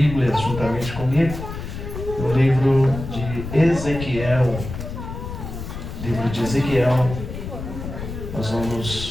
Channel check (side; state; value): left; noise; rumble, 8 dB below the sound